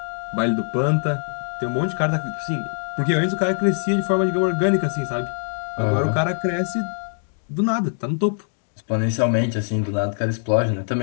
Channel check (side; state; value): right; silent; digital silence